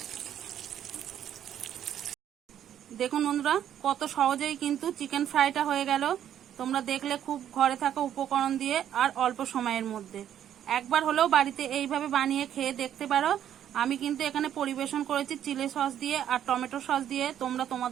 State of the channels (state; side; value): quieter; left; 10.3 dB